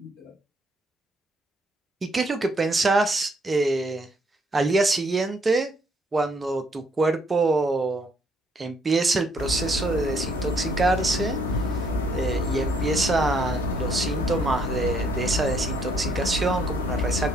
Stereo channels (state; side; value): normal; both; correlation 0.68